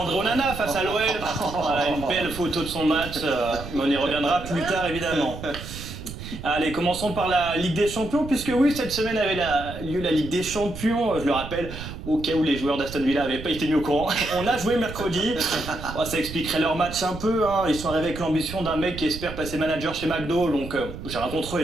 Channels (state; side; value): noise; right; rumble, 11 dB below the sound